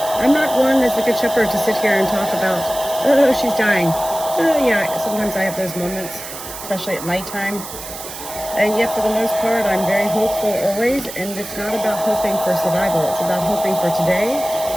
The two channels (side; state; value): right; noise; hiss, 11 dB below the sound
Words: I'm not one as a Good Shepherd to sit here and talk about, oh, she's dying. Oh, yeah, sometimes I have those moments, especially at nighttime. And yet, for the most part, I'm very hopeful always, and it's not about hoping for survival. It's about hoping for today